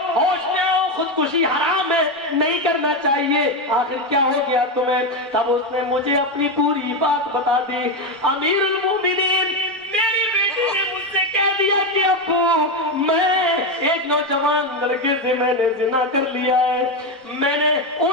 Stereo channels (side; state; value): both; normal; correlation 0.11